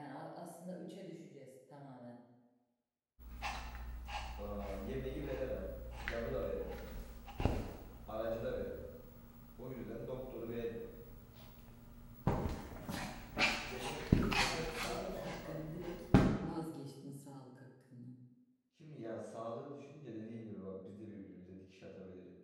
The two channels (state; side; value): identical; both; correlation 1.00